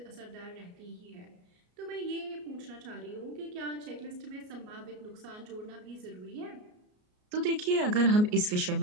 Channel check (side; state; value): left; late; 33 ms